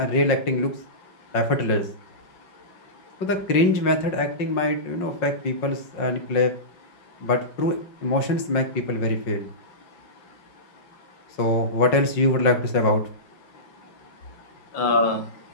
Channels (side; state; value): right; late; 5.5 ms